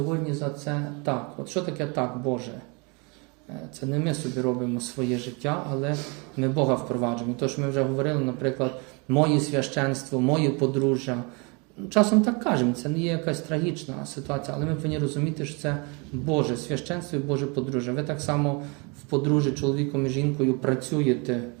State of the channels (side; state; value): left; quieter; 31.1 dB